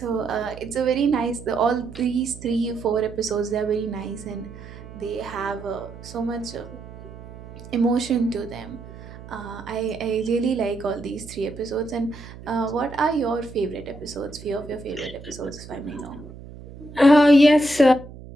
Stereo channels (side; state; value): right; noise; hum, 16 dB below the sound